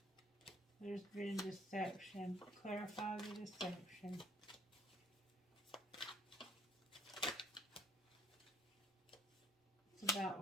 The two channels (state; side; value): normal; both; correlation 0.56